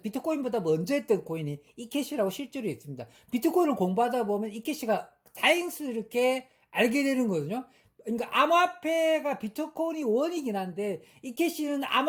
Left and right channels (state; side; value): identical; both; correlation 1.00